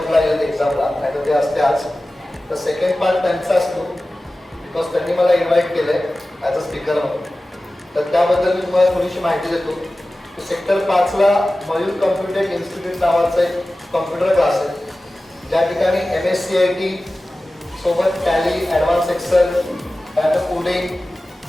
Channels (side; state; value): both; normal; correlation 0.96